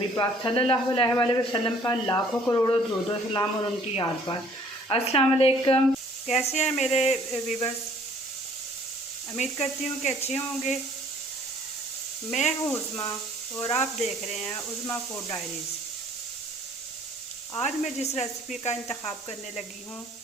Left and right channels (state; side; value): normal; both; correlation 0.57